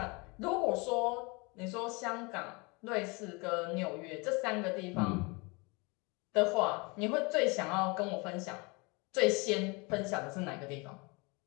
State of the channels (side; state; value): right; quieter; 28.1 dB